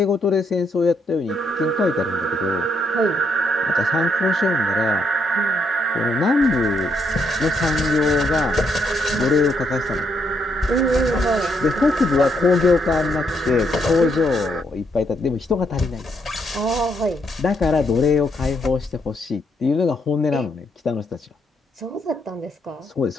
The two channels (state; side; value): normal; both; correlation 0.75